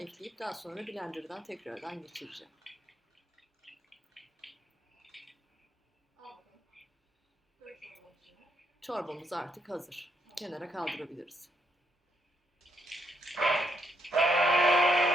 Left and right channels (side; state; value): both; normal; correlation 0.75